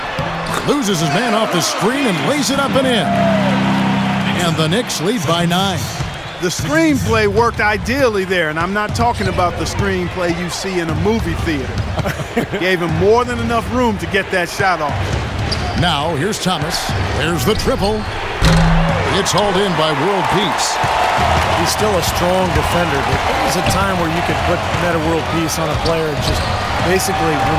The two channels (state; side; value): identical; both; correlation 1.00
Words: Loses his man off the screen and lays it up and in. And the Knicks lead by 9. The screenplay worked ideally there, and I'm not talking about the screenplay you see in a movie theater. Gave him more than enough room to get that shot off. Now, here's Thomas. There's the triple. It's hauled in by World Peace. He's still a strong defender, but there was a time where you could put Meta World Peace on a player and just basically